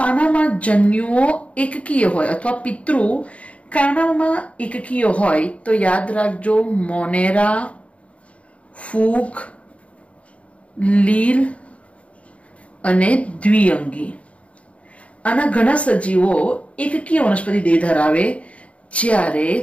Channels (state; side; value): late; right; 0.064 ms